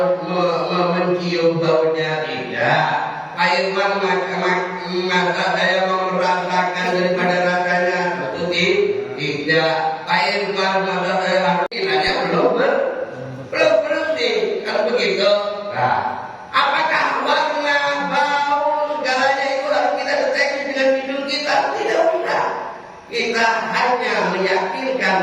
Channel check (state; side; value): identical; both; correlation 1.00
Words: mencium baunya tidak. Pak Irwan masa saya mau merasakan daripada rasanya tentu tidak. Pak Irwan masa saya harus nanya belum bersih. Kalau begitu, nah, apakah warna, bau, segalanya itu harus kita deteksi dengan hidung kita? Tidak usah. Kita hanya